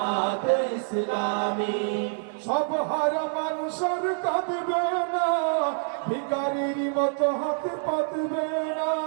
ইসলামী। সব হারা মানুষের কাঁদবে না, ভিখারির মতো হাতে পাতবে না,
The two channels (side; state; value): left; silent; digital silence